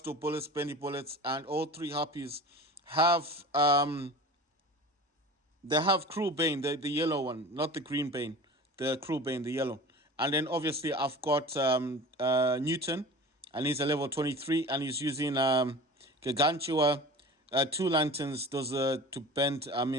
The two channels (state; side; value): normal; both; correlation 0.37